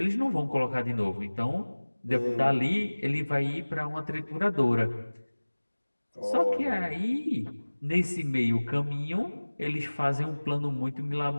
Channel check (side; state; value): both; inverted; correlation -1.00